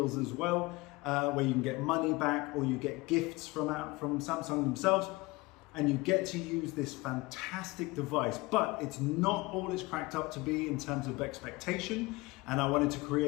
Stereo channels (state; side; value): quieter; right; 23.0 dB